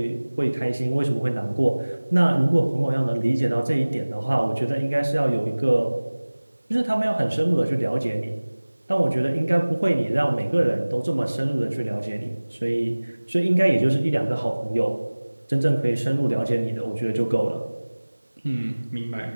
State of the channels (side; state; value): both; inverted; correlation -1.00